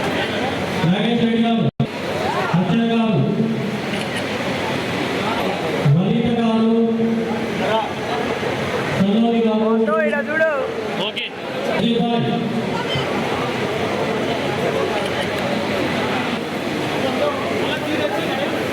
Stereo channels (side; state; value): both; identical; correlation 1.00